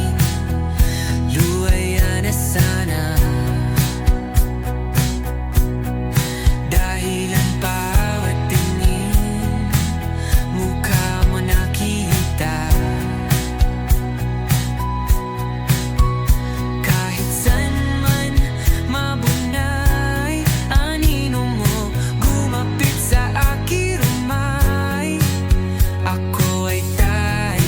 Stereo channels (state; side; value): identical; both; correlation 1.00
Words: luwaya na sana. Dahil ang bawat tingin, mukha mo nakita. Kahit saan man mabunay, anino mo gumapit sa aking rumay. Ako ay